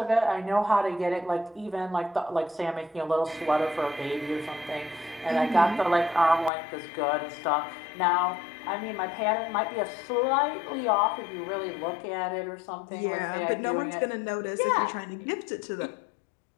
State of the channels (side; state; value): right; drops out; at 6.5 s